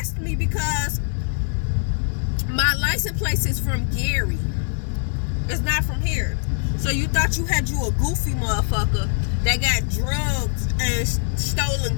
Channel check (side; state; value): right; silent; 64 dB below the other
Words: me because my license plate is from Gary. It's not from here. So you thought you had a goofy motherfucker that got drugs and stolen